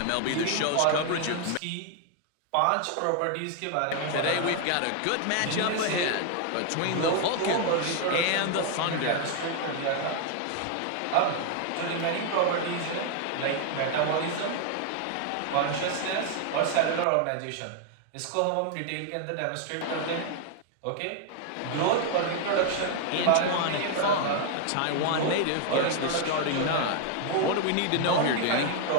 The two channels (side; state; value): both; different; correlation 0.00